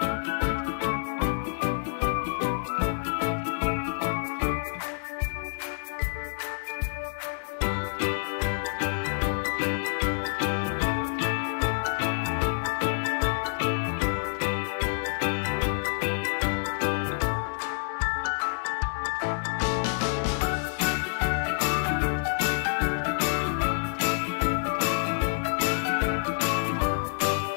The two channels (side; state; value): right; silent; 59 dB below the other